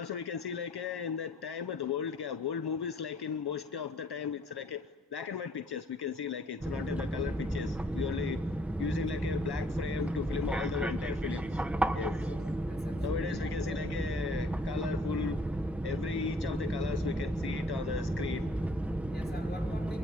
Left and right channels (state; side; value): normal; both; correlation 0.59